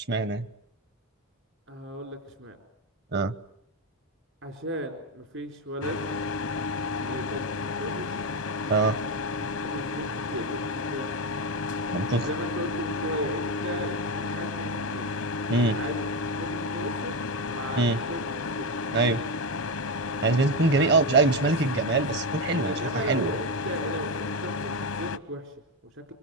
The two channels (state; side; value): normal; both; correlation 0.12